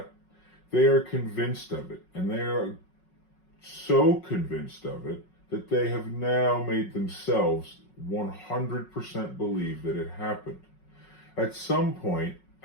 they are convinced of it, and they are so convinced of it that they have now made themselves 100% believe that it happened. At some point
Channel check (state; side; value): late; right; 5.4 ms